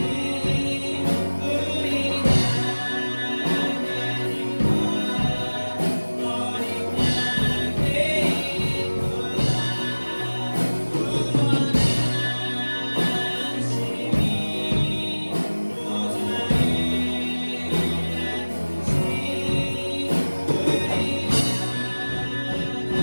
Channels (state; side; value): inverted; both; correlation -1.00